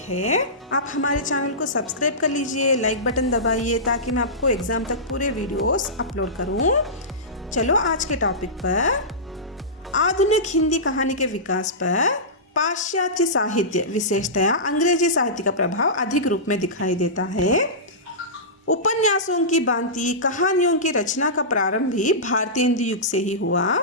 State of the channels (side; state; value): both; normal; correlation -0.18